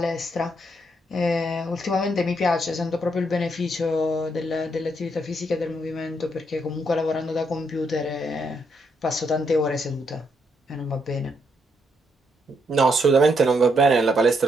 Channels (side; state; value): both; normal; correlation 0.76